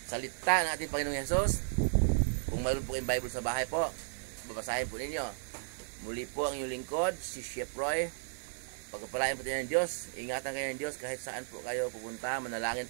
salita ng ating Panginoong Jesus. Kung mayroon po kayong Bible sa bahay po, babasahin po ninyo. Muli po ang inyong lingkod, si Chef Roy. Pagpapalain po tayo ng Diyos, ingatan kayo ng Diyos kahit saan po kayo pupunta, manalangin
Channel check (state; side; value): silent; left; 55 dB below the other